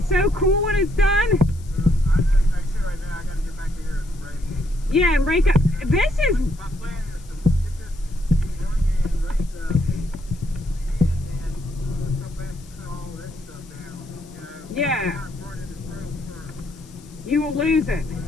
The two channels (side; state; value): left; noise; hiss, 25 dB below the sound